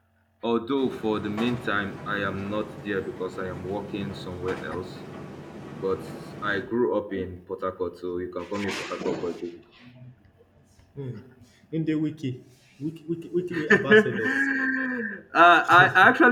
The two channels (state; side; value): identical; both; correlation 1.00